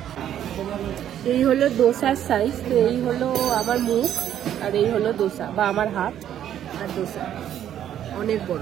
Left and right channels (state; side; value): quieter; left; 10.6 dB